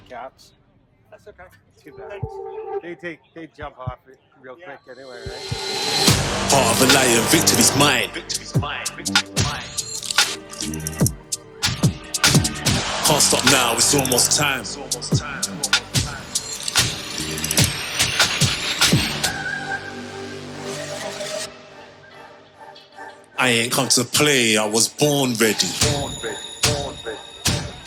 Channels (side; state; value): both; identical; correlation 1.00